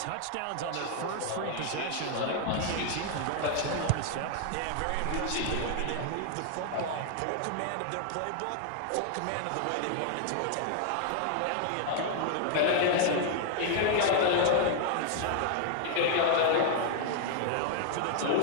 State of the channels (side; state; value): both; different; correlation 0.00